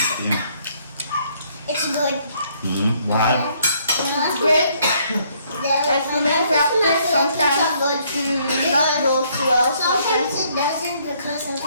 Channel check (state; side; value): inverted; both; correlation -0.66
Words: Yeah. It's good. Why? It's great. As we may practice, sometimes not goes well, Sometimes sometimes it doesn't because